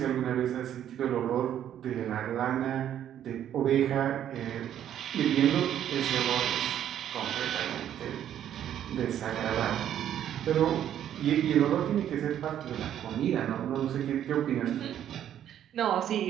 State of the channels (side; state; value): left; quieter; 10.5 dB